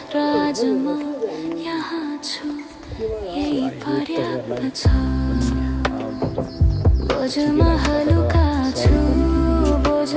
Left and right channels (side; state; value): both; identical; correlation 1.00